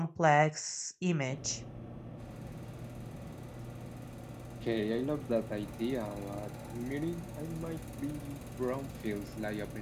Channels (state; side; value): identical; both; correlation 1.00